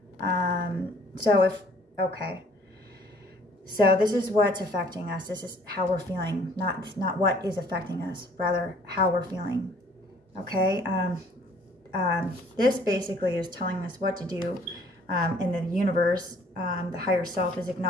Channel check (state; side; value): normal; both; correlation 0.58